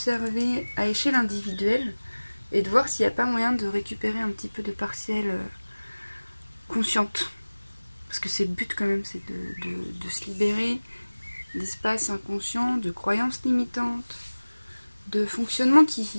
à échelle individuelle et de voir s'il n'y a pas moyen de récupérer un petit peu de partiel consciente. Parce que c'est le but quand même, c'est de se libérer d'espaces inconscients, de croyances limitantes, de fonctionnements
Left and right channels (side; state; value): both; inverted; correlation -1.00